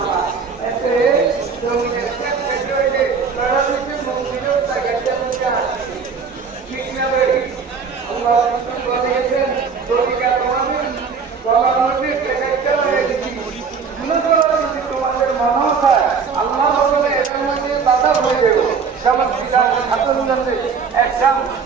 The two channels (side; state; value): left; quieter; 5.7 dB